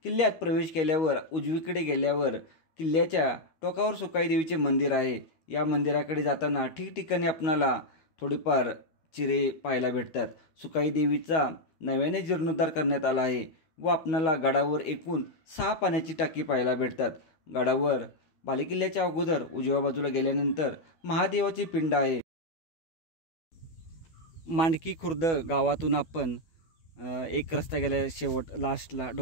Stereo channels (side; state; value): right; late; 13 ms